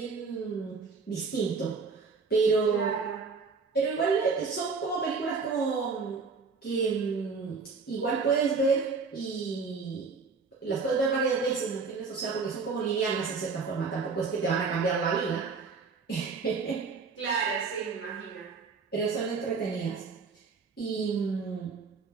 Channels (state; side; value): quieter; left; 4.8 dB